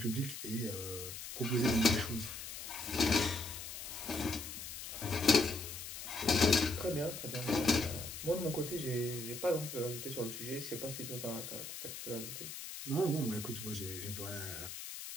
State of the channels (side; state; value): left; noise; hiss, 8 dB below the sound